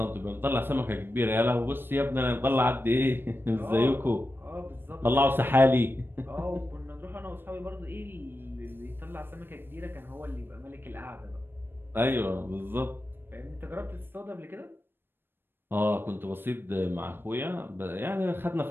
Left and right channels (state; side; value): late; left; 0.10 ms